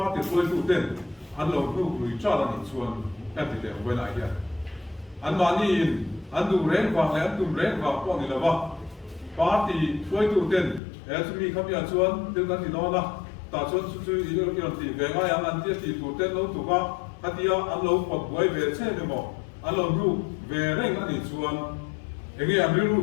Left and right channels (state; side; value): drops out; right; at 10.8 s